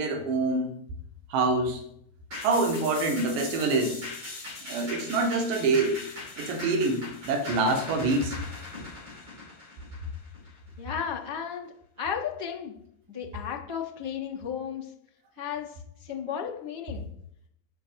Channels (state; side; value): late; left; 8.3 ms